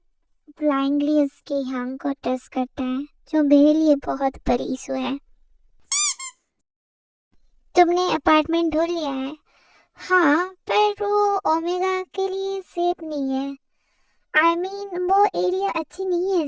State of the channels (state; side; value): identical; both; correlation 1.00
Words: ब्लाइंडली उसके हांग को टच करता है, जो मेरे लिए बहुत बड़ी इशू है। तुमने अपार्टमेंट ढूंढ लिया है? हाँ, पर वो ओमेगा के लिए सेफ नहीं है। वो एरिया अच्छी नहीं है